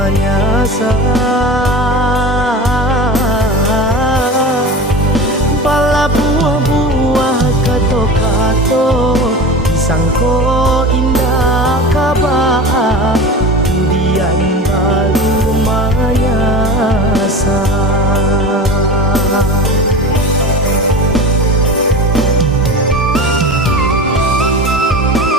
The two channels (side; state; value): both; normal; correlation 0.32